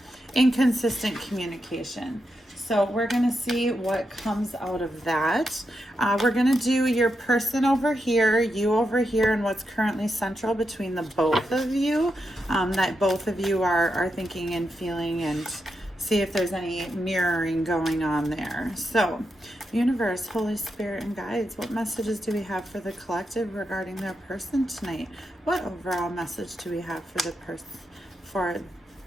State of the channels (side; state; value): both; normal; correlation 0.85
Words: inconsistent communication. So we're going to see what comes out of that. We're going to do your person over here, you over here, and what's currently central between the both of you, that both of you are thinking and feeling, and see if there's any mirroring going on there. So, universe, Holy Spirit, and guides, what messages do we have for the collective regarding their person tonight? What overall message do we have for the person, for